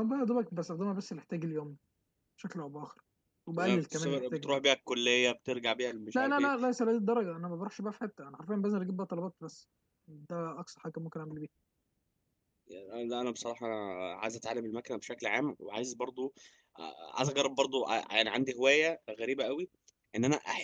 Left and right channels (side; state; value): both; identical; correlation 1.00